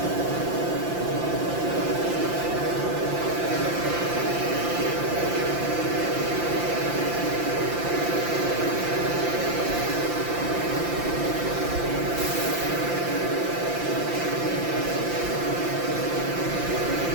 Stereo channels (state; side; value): late; left; 5.8 ms